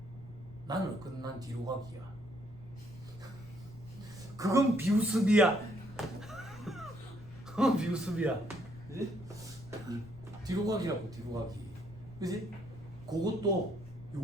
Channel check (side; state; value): left; noise; rumble, 18 dB below the sound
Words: 나는 없거든. 난 뒤로 가기야. 그건 비우습이야. 비우습이야. 그지? 뒤로 가기라고, 뒤로 가기. 그지? 그것도